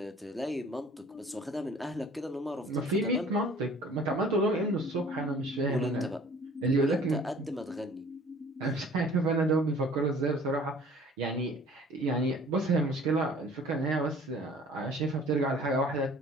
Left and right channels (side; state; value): both; normal; correlation 0.50